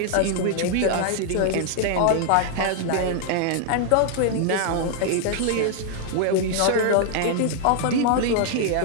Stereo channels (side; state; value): both; different; correlation 0.00